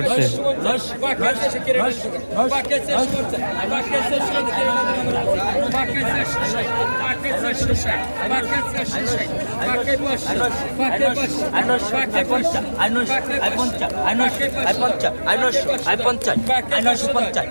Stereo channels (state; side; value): inverted; both; correlation -1.00